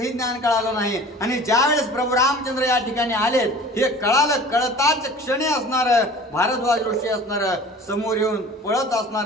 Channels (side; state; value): both; normal; correlation 0.43